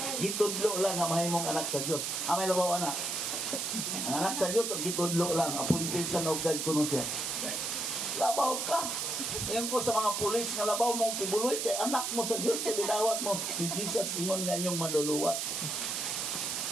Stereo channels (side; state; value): right; noise; hiss, 1 dB below the sound